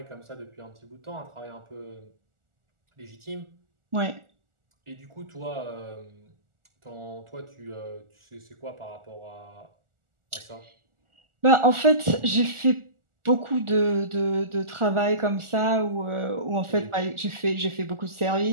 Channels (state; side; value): late; left; 1.4 ms